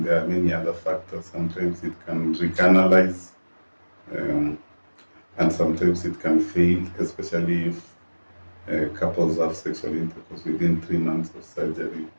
there are many other factors. Sometimes it can recanalize, and sometimes it can fail, especially if couples have sexual intercourse within 3 months of surgery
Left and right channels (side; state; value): both; inverted; correlation -1.00